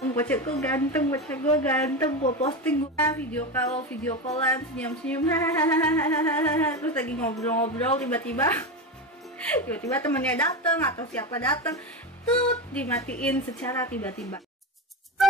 bocah gue ganteng, gue posting gue video callan senyum-senyum terus lagi ngobrol-ngobrol tiba-tiba temennya dateng atau siapa dateng tuh dimatiin secara tiba-tiba.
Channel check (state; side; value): normal; both; correlation 0.18